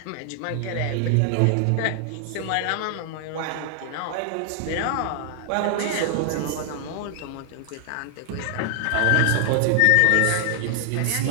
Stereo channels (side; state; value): both; different; correlation 0.00